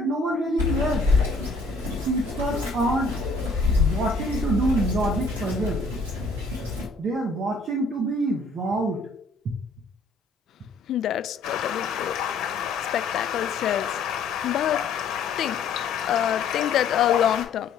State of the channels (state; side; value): quieter; right; 3.4 dB